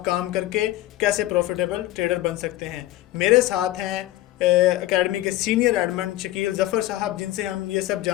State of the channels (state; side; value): quieter; right; 15.9 dB